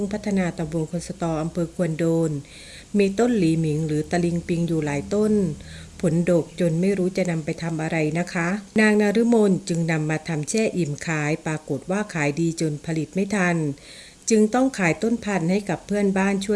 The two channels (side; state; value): both; identical; correlation 1.00